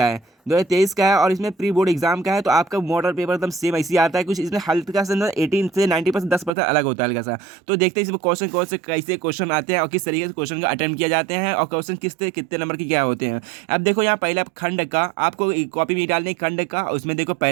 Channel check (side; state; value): left; drops out; at 6.5 s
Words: है, 2023 का है और इसमें प्री बोर्ड एग्जाम का है। तो आपका मॉडल पेपर एकदम सेम ऐसे ही आता है, कुछ इसमें हल्का सा 18 से 90% 10% अलग होता है हल्का सा। तो देखते हैं इसमें क्वेश्चन कौन से कैसे क्वेश्चन आते हैं और किस तरीके से क्वेश्चन का अटेम्प्ट किया जाते हैं और क्वेश्चन कितने नंबर के क्या होते हैं। अब देखो यहाँ पहला खंड का आपको कॉपी में डालने खंड का, उसमें देखो